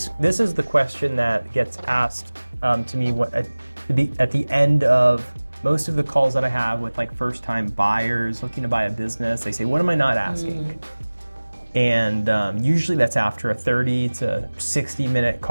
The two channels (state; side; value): inverted; both; correlation -1.00